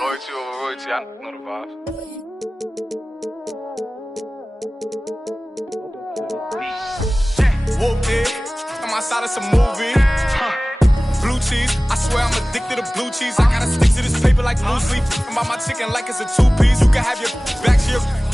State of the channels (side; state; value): both; normal; correlation 0.98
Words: over royalty, I know the vibes. Whooped it, I'm outside of some movie. Blue cheese, I swear I'm addicted to blue cheese. I gotta stick to this paper like blue sleep. I'm about my chicken like it's a two-piece. You can have your back here